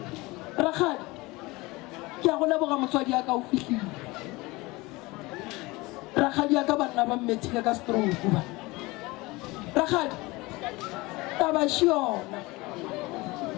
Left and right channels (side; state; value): right; quieter; 22.4 dB